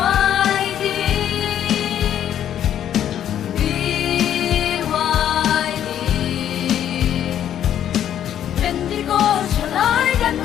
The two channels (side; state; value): right; quieter; 10.4 dB